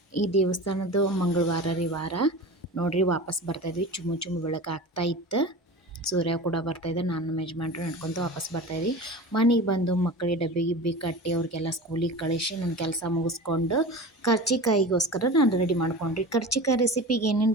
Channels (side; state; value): both; normal; correlation 0.33